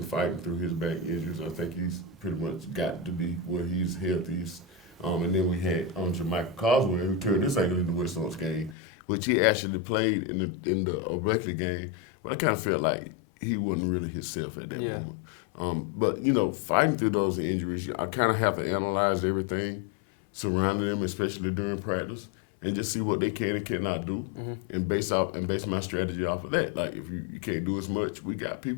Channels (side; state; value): right; drops out; at 8.8 s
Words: fighting through his back injuries. I think he's pretty much got to be where he's healthiest. And then we had Jermichael Coswell, who turned this ankle in the West Lawrence game, which he actually played in the Berkeley game. But I kind of felt like he wasn't really himself at that moment. But, you know, fighting through those injuries, I kind of have to analyze everything surrounding them, especially during practice, and just see what they can and cannot do, and base my strategy off of that. Like, if you can't do as much, we got